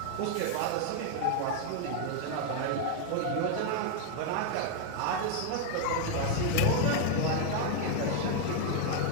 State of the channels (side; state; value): both; different; correlation 0.00